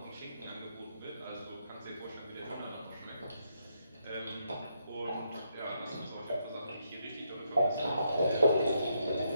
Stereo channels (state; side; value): inverted; both; correlation -0.78